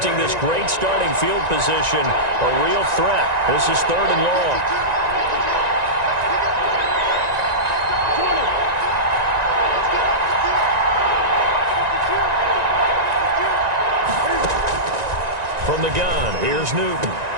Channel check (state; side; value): late; left; 1.9 ms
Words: this great starting field position, a real threat. This is 3rd and long. From the gun, here's Newton.